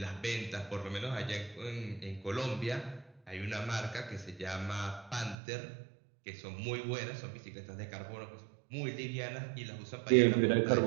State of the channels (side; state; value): left; drops out; at 5.4 s